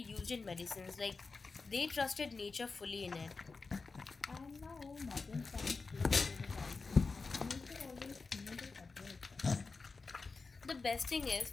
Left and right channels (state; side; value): quieter; right; 4.2 dB